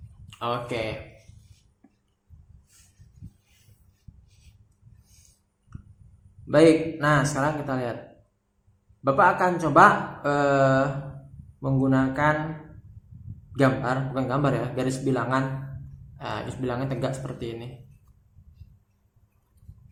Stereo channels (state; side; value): identical; both; correlation 1.00